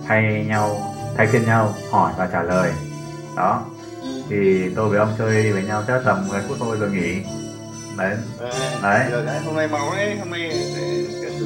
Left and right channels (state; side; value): identical; both; correlation 1.00